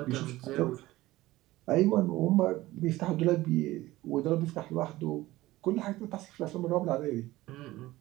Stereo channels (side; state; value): left; quieter; 17.6 dB